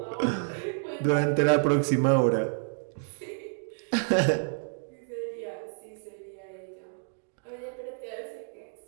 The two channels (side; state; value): left; silent; digital silence